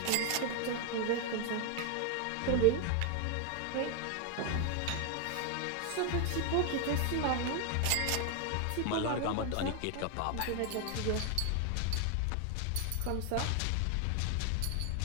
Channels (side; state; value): both; different; correlation 0.00